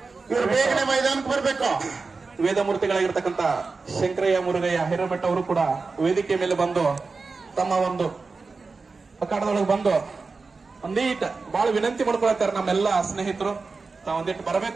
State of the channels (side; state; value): left; quieter; 4.2 dB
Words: ಇವರು ಬೇಗನೆ ಮೈದಾನಕ್ಕೆ ಬರಬೇಕು. ವೇದಮೂರ್ತಿಗಳಾಗಿರ್ತಕ್ಕಂಥ ಶಂಕರಯ್ಯ ಮುರುಗಯ್ಯ ಹಿರೇಮಠ ಅವರು ಕೂಡ ವೇದಿಕೆ ಮೇಲೆ ಬಂದು ತಮ್ಮ ಒಂದು ಅಖಾಡದೊಳಗೆ ಬಂದು ಒಂದೀಟ್ ಬಹಳ ವಿನಂತಿ ಮಾಡ್ಕೊಳ್ತಾರೆ ನಮ್ಮೆಲ್ಲ ಸ್ನೇಹಿತರು. ತಾವು ಒಂದಿಟ್ಟು